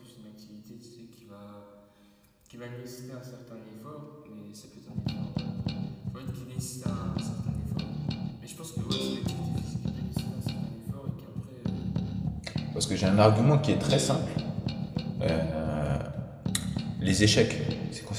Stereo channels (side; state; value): both; identical; correlation 1.00